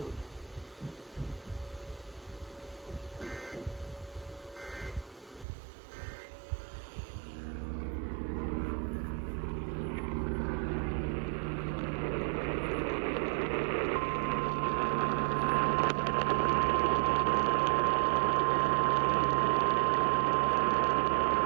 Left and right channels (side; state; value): left; drops out; at 5.5 s